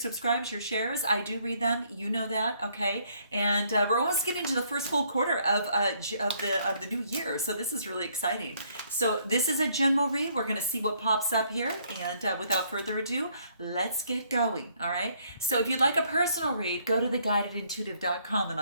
your shares. I do read them. You know that. Okay. And we're almost getting to the first full quarter of the new year, so this is really exciting. So this is a general read. We're going to see what pops up here, and without further ado, let's get going. All right. So if you'd like a personal read, go to theguidedintuitive.com and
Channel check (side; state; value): both; inverted; correlation -0.67